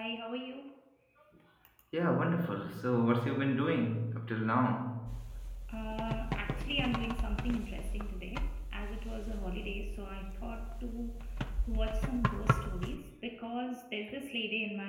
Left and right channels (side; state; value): both; identical; correlation 1.00